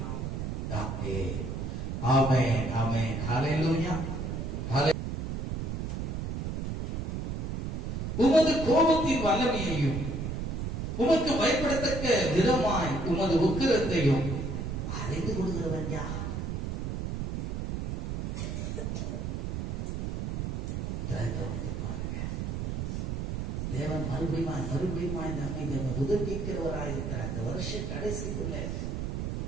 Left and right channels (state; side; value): noise; right; rumble, 2 dB below the sound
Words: நாமத்திலே. ஆமென், ஆமென். ஹல்லேலூயா. உமது கோபத்தின் வல்லமையையும் உமக்கு பயப்படத்தக்க விதமாய் உமது உக்கிரத்தையும் அறிந்து கொள்கிறவன் யார்? தேவன் மறுபடியும் நம்மை உதவிக்கிறவராயிருக்கிறார். இந்த வருஷ கடைசிக்குள்ள